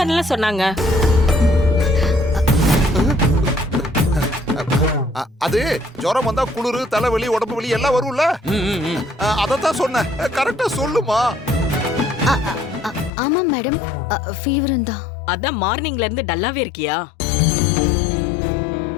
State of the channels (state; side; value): drops out; right; at 13.1 s